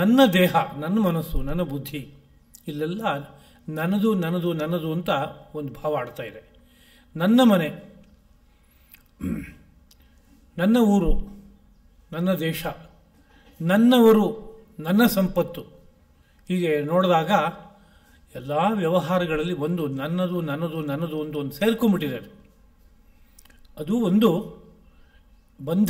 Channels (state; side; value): identical; both; correlation 1.00